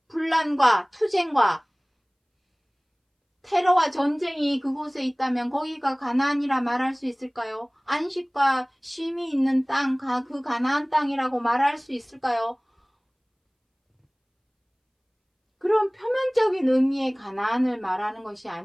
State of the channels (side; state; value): both; identical; correlation 1.00